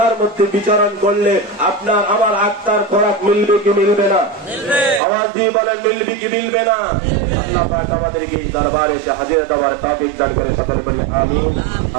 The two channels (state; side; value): drops out; left; at 5.0 s